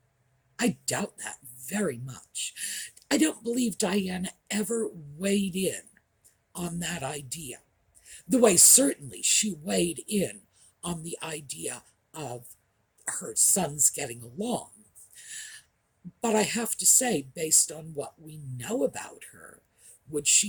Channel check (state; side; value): identical; both; correlation 1.00